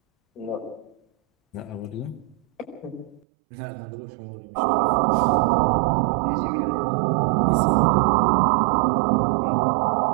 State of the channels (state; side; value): drops out; left; at 3.2 s